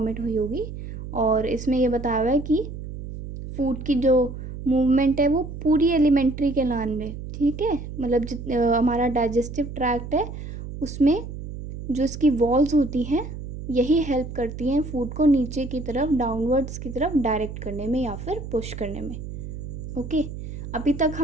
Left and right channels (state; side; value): noise; right; hum, 9 dB below the sound